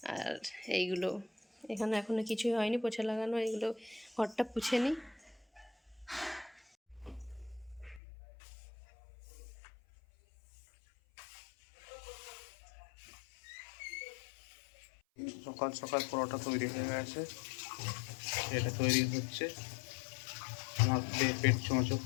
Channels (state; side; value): drops out; right; at 8.0 s